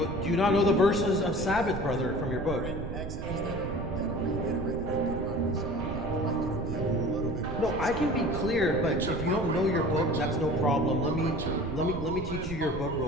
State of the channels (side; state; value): right; noise; rumble, 8 dB below the sound